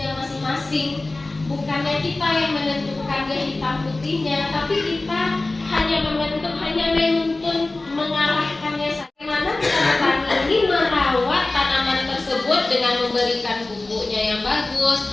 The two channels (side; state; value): right; quieter; 3.1 dB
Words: masing-masing. Bukannya kita yang menentukan dia hitam putihnya, tapi kita hanya menuntun mengarahkannya. Bagaimana kita petani ini merawat tanaman tersebut dengan memberikan pupuknya yang bagus,